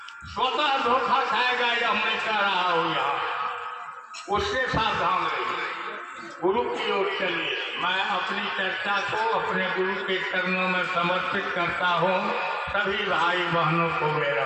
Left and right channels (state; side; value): identical; both; correlation 1.00